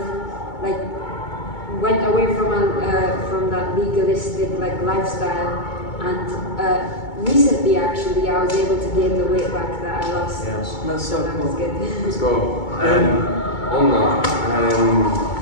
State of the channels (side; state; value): right; late; 2.2 ms